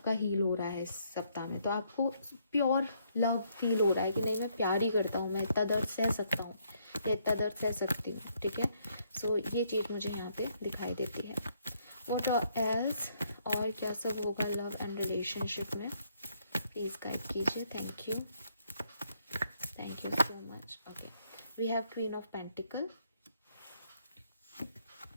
हील हो रहा है इस सप्ताह में। तो आपको प्योर लव फील हो रहा है कि नहीं, मैं प्यार ही करता हूँ, मैं इतना दर्द सह सकता हूँ या इतना दर्द सह सकती हूँ, ठीक है। सो ये चीज़ मुझे यहाँ पे दिखाई देती है। व्हाट एल्स, और क्या सब होगा लव एंड रिलेशनशिप में, प्लीज गाइड कीजिए। Thank you so much. Okay, we have queen of pentacle,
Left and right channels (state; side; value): inverted; both; correlation -0.71